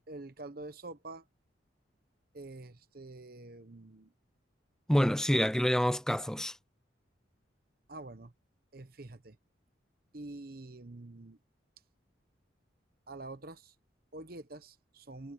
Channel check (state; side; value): normal; both; correlation 0.93